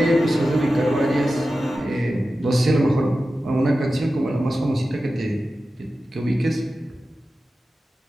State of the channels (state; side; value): normal; both; correlation 0.93